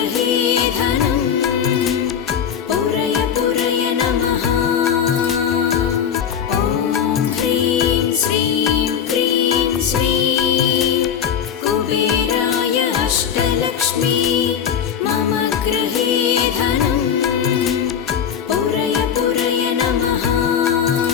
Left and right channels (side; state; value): right; quieter; 8.2 dB